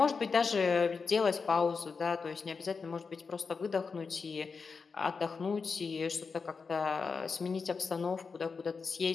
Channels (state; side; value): quieter; right; 5.0 dB